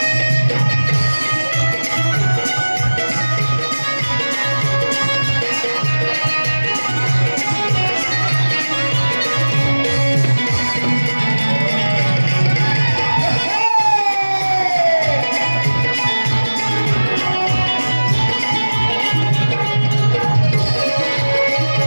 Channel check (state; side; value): inverted; both; correlation -1.00